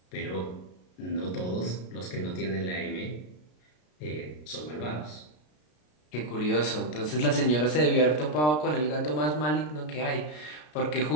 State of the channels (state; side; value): late; right; 33 ms